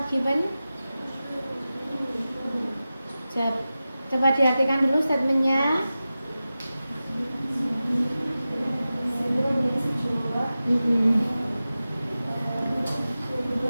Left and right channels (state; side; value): inverted; both; correlation -0.95